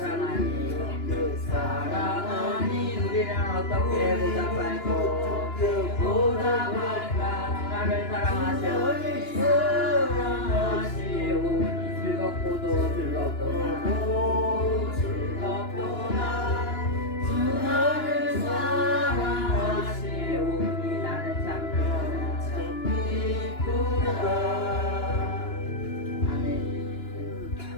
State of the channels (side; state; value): right; late; 2.9 ms